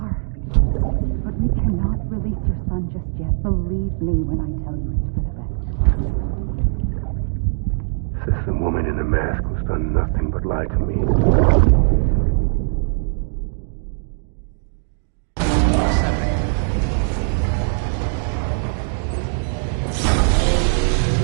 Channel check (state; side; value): silent; left; digital silence